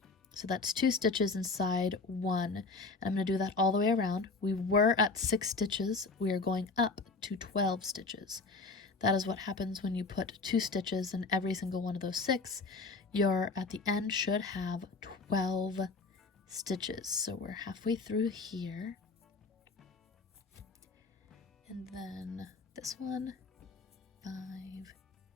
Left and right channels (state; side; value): quieter; right; 3.9 dB